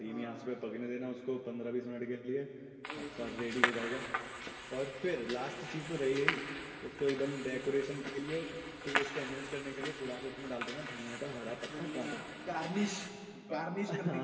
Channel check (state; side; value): identical; both; correlation 1.00